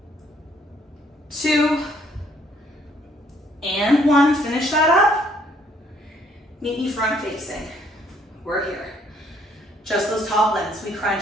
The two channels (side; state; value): both; normal; correlation 0.65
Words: 2. And 1. Finish that up. Meet me front facing. We're here. Just those top limbs. We